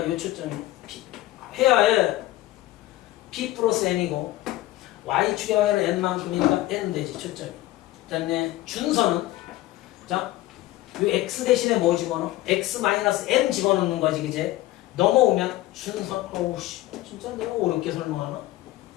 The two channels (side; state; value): right; quieter; 16.3 dB